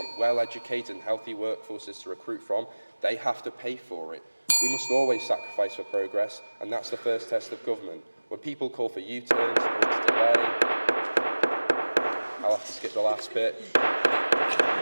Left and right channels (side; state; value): both; inverted; correlation -1.00